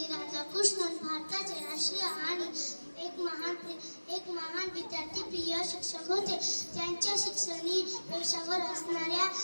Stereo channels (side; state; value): both; inverted; correlation -1.00